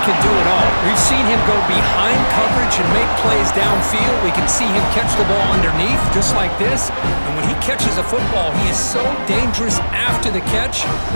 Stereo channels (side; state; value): both; inverted; correlation -1.00